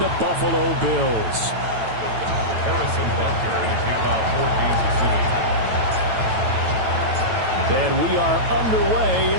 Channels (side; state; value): left; late; 9.1 ms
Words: Buffalo Bills. Harrison Butker in a kickoff for Kansas City. And we are underway